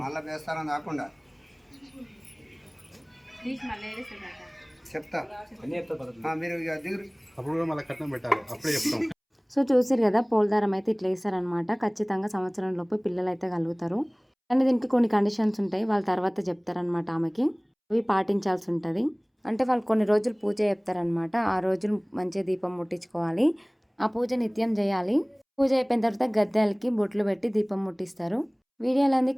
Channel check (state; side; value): identical; both; correlation 1.00